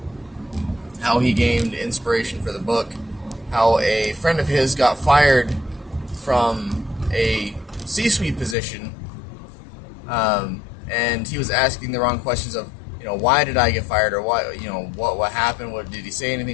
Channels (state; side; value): drops out; right; at 8.6 s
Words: he gained inspiration for the book, how a friend of his got fired from a C-suite position, and he was asking the wrong questions of, why did I get fired, or why, what happened, what did he say